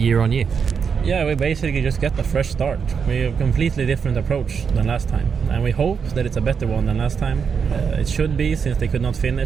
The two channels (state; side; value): quieter; left; 6.3 dB